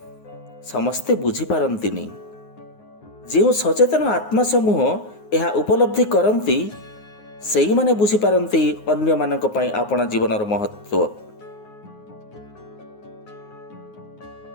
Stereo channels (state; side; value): late; right; 9.5 ms